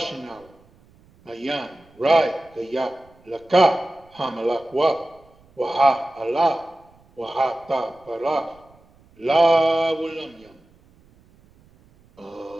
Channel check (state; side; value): noise; right; rumble, 30 dB below the sound